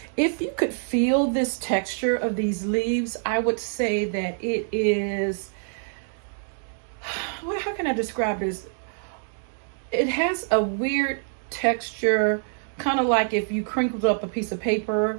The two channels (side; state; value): left; silent; digital silence